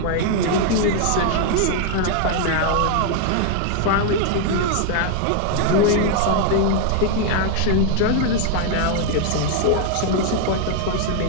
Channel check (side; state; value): both; different; correlation 0.00